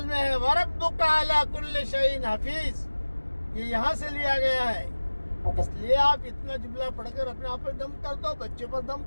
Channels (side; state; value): both; inverted; correlation -1.00